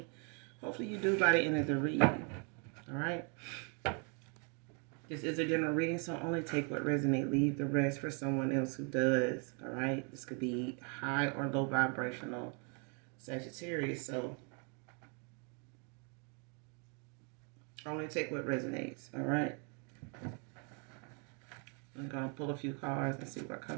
hopefully you do by the end of the reading. All right. This is a general reading, so only take what resonates. Leave the rest for someone else who does. All right. This could be high or low vibrational Sagittarius, so only take what resonates. All right. I'm gonna pull a few cards and see what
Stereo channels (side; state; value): left; quieter; 37.8 dB